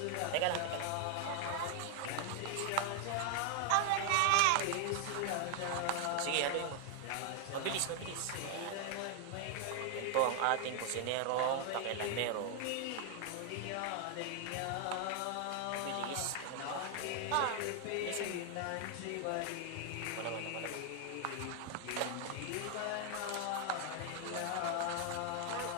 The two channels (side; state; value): both; different; correlation 0.00